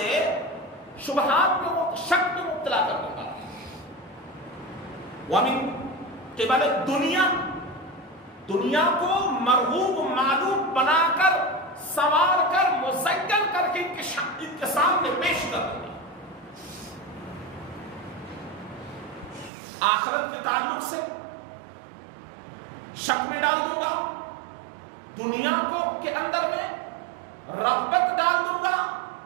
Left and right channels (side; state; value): left; drops out; at 19.5 s